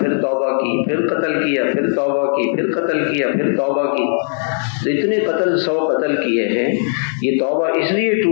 توبہ کی, پھر قتل کیا, پھر توبہ کی, پھر قتل کیا, پھر توبہ کی. تو اتنے 100 قتل کیے ہیں. یہ توبہ اس لیے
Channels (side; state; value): right; silent; digital silence